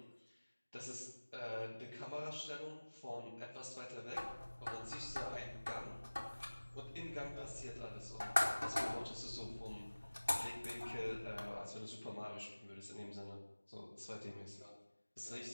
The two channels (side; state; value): both; inverted; correlation -1.00